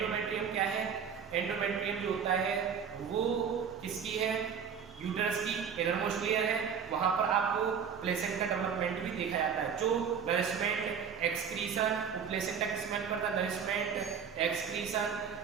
क्या है? एंडोमेट्रियम जो होता है वो किसकी है? यूटेरस की इनरमोस्ट लेयर है। वहां पर आपको प्लेसेंटा डेवलपमेंट भी देखा जाता है। जो नरिशमेंट एक्सक्रीशन, प्लेसेंटा किसमें करता है? Nourishment excretion,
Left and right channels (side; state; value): left; quieter; 7.0 dB